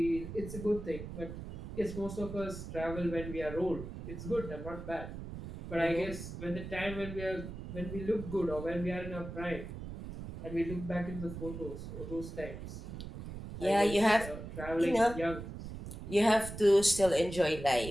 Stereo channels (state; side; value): noise; right; rumble, 9 dB below the sound